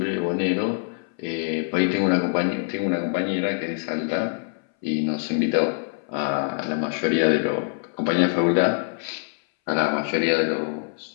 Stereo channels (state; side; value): silent; right; 60 dB below the other